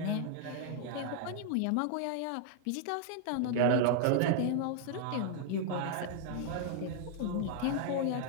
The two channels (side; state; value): both; different; correlation -0.01